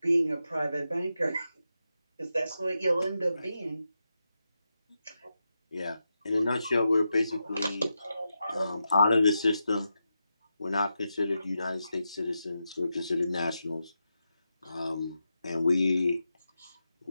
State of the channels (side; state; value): both; inverted; correlation -0.88